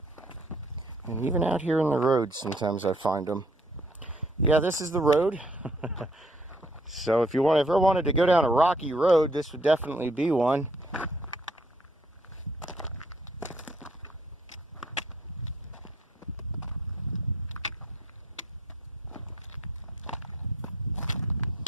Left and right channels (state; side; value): normal; both; correlation 0.63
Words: And even out here in the road, sometimes I find them. Yeah, this is the road. So if you ever wanted to go down a rocky road, this would definitely be one.